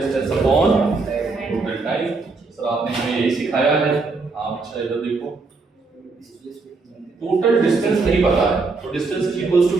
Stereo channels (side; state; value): left; quieter; 4.0 dB